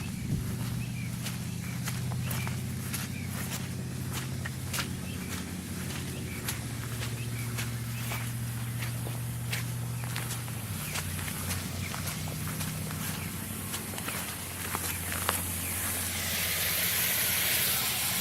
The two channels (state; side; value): identical; both; correlation 1.00